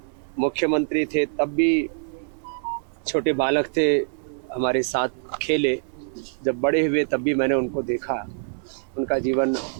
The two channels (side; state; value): left; silent; 60 dB below the other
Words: मुख्यमंत्री थे तब भी छोटे बालक थे, हमारे साथ खेले। जब बड़े हुए तब भी मैंने उनको देखा। उनका जीवन